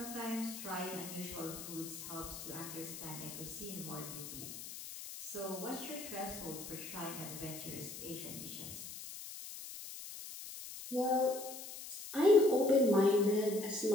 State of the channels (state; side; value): noise; left; hiss, 10 dB below the sound